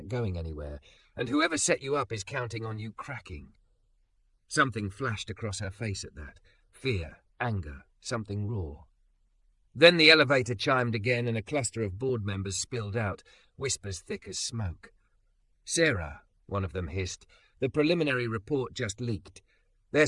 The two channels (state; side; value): identical; both; correlation 1.00